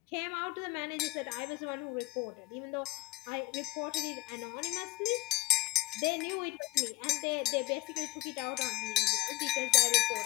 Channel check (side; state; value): right; quieter; 20.0 dB